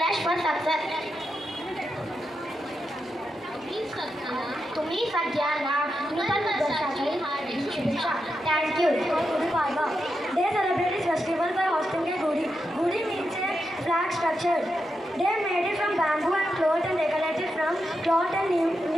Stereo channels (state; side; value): normal; both; correlation 0.86